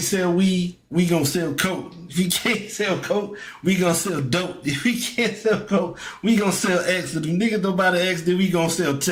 weed. We gonna sell coke. If we can't sell coke, we gonna sell dope. If we can't sell coke, we gonna sell X. If the niggas don't buy the X, then we gonna sell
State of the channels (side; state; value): both; identical; correlation 1.00